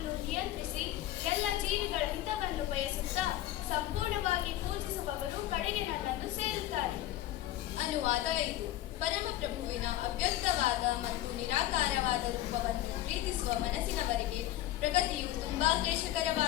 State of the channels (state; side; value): quieter; right; 14.4 dB